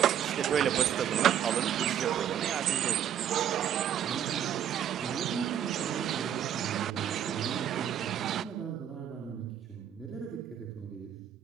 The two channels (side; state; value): left; quieter; 9.7 dB